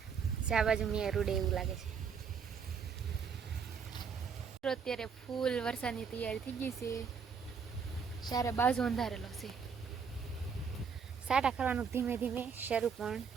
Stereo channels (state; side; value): quieter; left; 6.2 dB